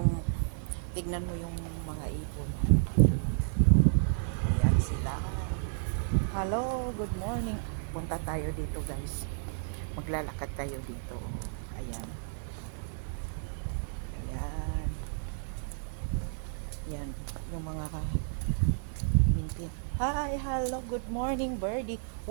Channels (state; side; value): silent; left; digital silence